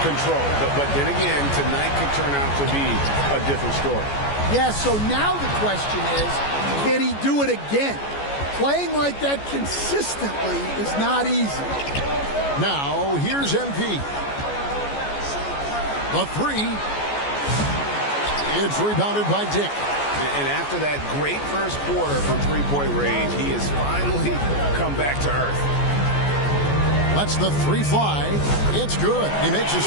control. But then again, tonight could turn out to be a different story. Yeah, so now the question is, can he do it again? Playing like that consistently is not easy. Now, here's MP. The 3. It's rebounded by Dick. And after that great first quarter from three-point range, he has finally come back to earth. Lets the 3 fly. It's good. He makes his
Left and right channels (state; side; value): late; right; 14 ms